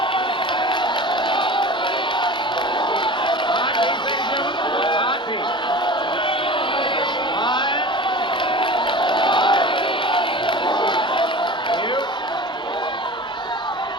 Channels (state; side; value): normal; both; correlation 0.36